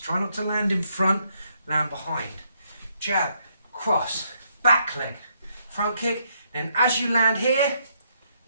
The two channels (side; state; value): both; inverted; correlation -0.73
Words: not to land in front, land behind. Jab, cross, back leg, front kick. Then as you land here,